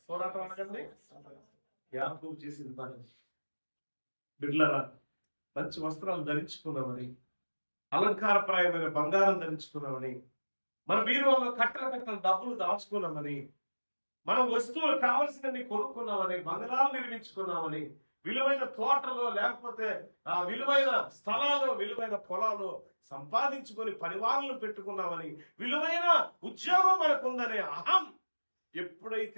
పోరాటం అనగండి? యాకోబు చేసింది పని. బిడ్డలారా, మంచి వస్త్రాలు ధరించుకున్నామని, అలంకారప్రాయమైన బంగారం ధరించుకున్నామని, మన బీరువాలో కట్టల కట్టల డబ్బులు దాచుకున్నామని, మన వస్తువులు కావలసినవి కొనుక్కున్నామని, బంగారాలు నిర్మించుకున్నామని, విలువైన తోటలో లేకపోతే ఆ విలువైన స్థలాలు, విలువైన పొలాలు సంపాదించుకొని పరివారాలను పెట్టుకున్నామని, విలువైన ఉద్యోగం మనకుందనే అహం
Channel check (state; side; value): inverted; both; correlation -1.00